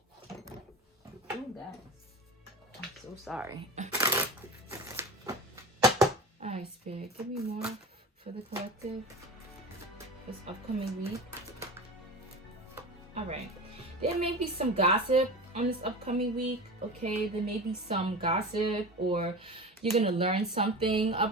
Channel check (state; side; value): normal; both; correlation 0.30